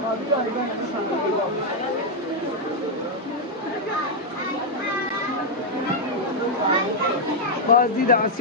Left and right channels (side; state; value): both; normal; correlation -0.01